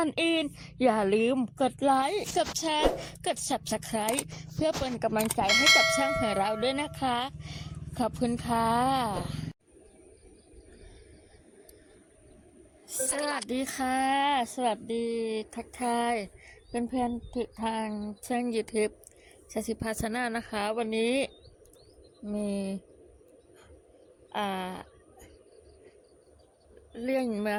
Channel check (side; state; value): both; identical; correlation 1.00